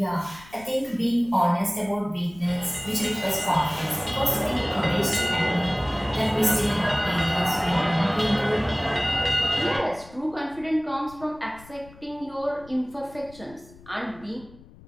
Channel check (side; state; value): left; noise; rumble, 22 dB below the sound